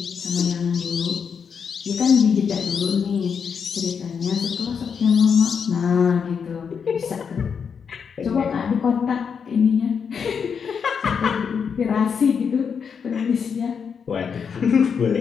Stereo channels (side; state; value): right; quieter; 6.6 dB